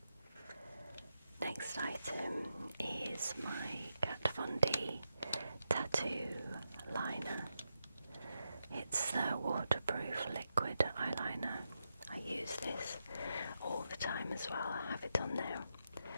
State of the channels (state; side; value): inverted; both; correlation -0.86